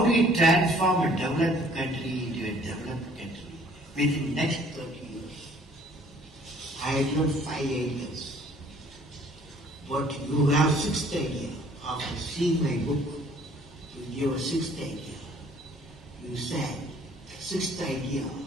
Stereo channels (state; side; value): normal; both; correlation 0.57